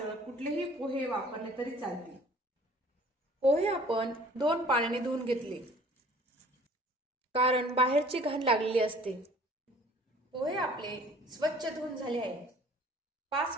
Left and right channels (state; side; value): normal; both; correlation 0.52